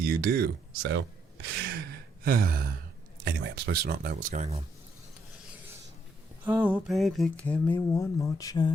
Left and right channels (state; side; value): normal; both; correlation 0.74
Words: do, so... Anyway, I'm supposed to not know what's going on. Oh, baby, give me one more